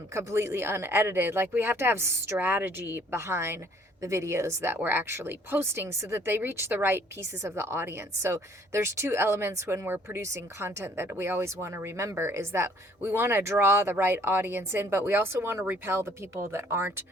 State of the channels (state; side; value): normal; both; correlation 0.59